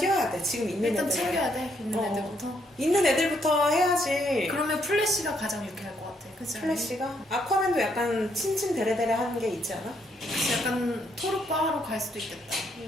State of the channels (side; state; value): both; normal; correlation 0.73